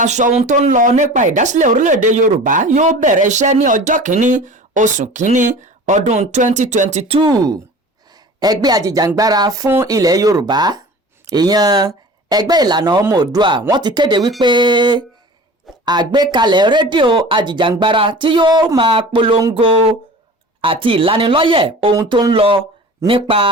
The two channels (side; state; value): both; normal; correlation 0.39